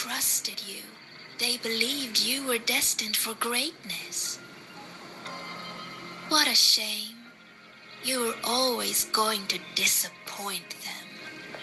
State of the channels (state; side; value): identical; both; correlation 1.00